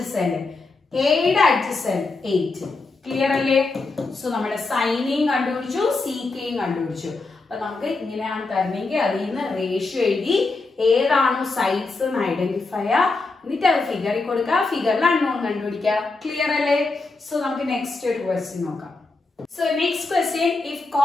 എയുടെ അഡ്ജസന്റ് 8. ക്ലിയർ അല്ലേ? സോ നമ്മുടെ സൈനെയും കണ്ടുപിടിച്ചു, സീക്കയും കണ്ടുപിടിച്ചു. അപ്പൊ നമുക്ക് ഇങ്ങനെയാണ് തരണമെങ്കിൽ അതിൽ നിന്ന് റേഷ്യോ എഴുതി ഏതാണോ സൈഡ്സ് എന്ന് ഐഡന്റിഫൈ ചെയ്യുക, എന്നിട്ട് അത് ഫിഗറിൽ കൊടുക്കുക, ഫിഗറിൽ അൺനോൺ കണ്ടുപിടിക്കുക. ക്ലിയർ അല്ലേ? സോ നമുക്ക് നെക്സ്റ്റ് ഒരു ക്വസ്റ്റ്യൻ നോക്കാം. So next question, if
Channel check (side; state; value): right; quieter; 3.6 dB